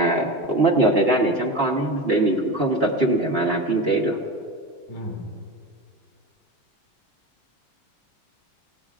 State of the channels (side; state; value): both; normal; correlation 0.26